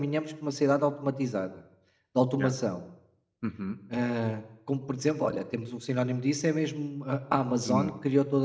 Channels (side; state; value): both; identical; correlation 1.00